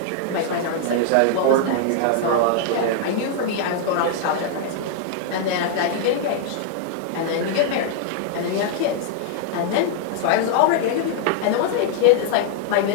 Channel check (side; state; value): both; different; correlation -0.01